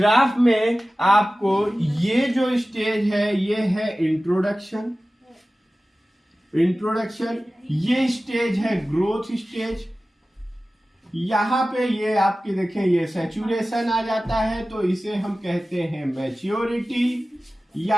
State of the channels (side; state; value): both; normal; correlation 0.96